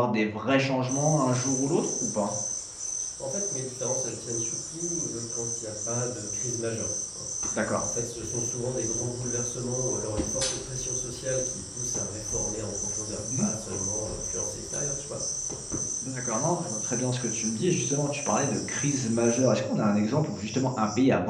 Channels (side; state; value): both; identical; correlation 1.00